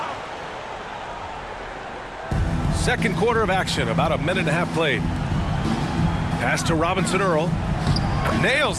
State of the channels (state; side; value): identical; both; correlation 1.00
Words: Second quarter of action, about a minute and a half played. Pass to Robinson-Earl.